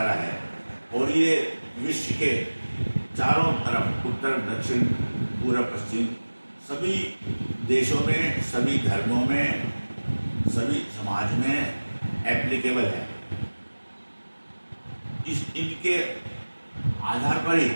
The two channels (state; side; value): inverted; both; correlation -1.00